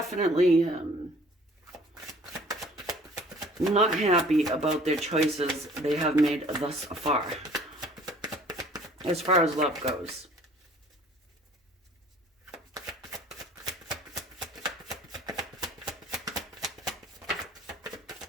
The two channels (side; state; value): both; normal; correlation 0.52